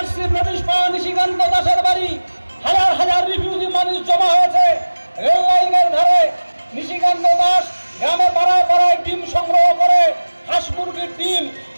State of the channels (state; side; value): inverted; both; correlation -1.00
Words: নোটিশ পাওয়া নিশিকান্ত দাসের বাড়ি। হাজার হাজার রিফিউজি মানুষ জমা হয়েছে রেল লাইনের ধারে। নিশিকান্ত দাস গ্রামে পাড়ায় পাড়ায় ডিম সংগ্রহ করে, হাঁস মুরগির ডিম